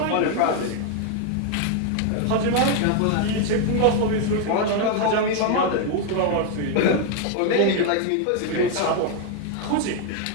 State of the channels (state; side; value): different; both; correlation 0.01